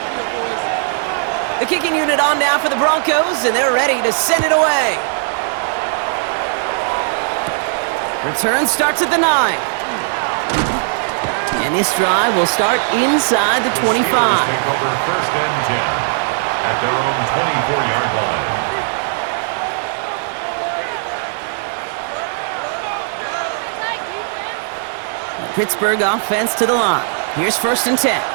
The kicking unit on now for the Broncos, and they're ready to send it away. Return starts at the 9. And this drive will start inside the 25. Take over 1st and 10 at their own 24-yard line. Pittsburgh offense to the line. Here's 1st and 10.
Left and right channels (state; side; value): silent; left; digital silence